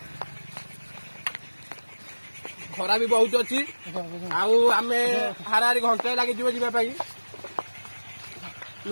ଖରା ବି ବହୁତ ଅଛି ଆଉ ଆମେ ହାରାହାରି ଘଣ୍ଟାଏ ଲାଗିଯିବ ଯିବା ପାଇଁ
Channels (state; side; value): inverted; both; correlation -1.00